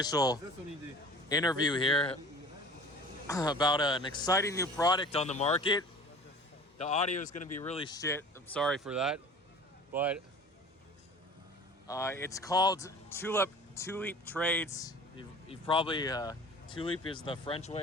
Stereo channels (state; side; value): normal; both; correlation 0.43